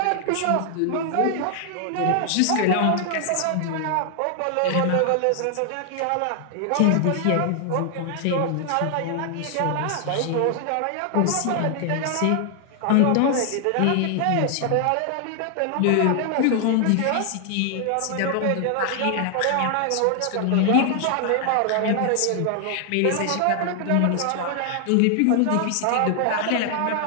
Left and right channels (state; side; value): different; both; correlation 0.00